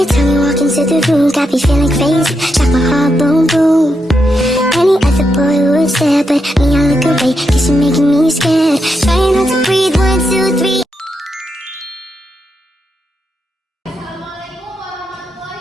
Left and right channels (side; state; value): both; normal; correlation 0.83